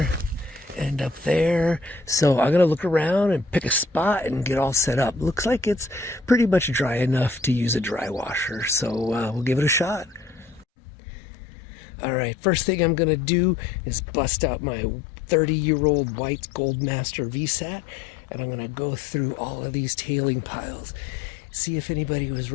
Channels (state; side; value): drops out; right; at 10.7 s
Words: and up there. So I'm gonna look around and pick a spot and get all set up. Looks like it's pretty much dry enough to use a dry washer, so we'll give it a shot. All right, first thing I'm gonna do is bust out my 30-year-old white Goldmaster VSAT, and I'm gonna go through all of these tailing piles, see if anybody was